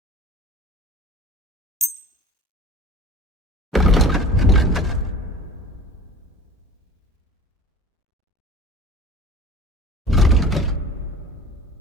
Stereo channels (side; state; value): both; normal; correlation 0.40